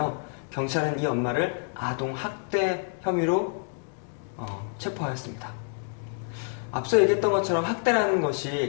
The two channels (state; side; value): silent; right; 55 dB below the other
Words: 경찰은 이 엄마를 아동학대 혐의로 체포하였습니다. 앞서 얘기했던 것처럼 학대라는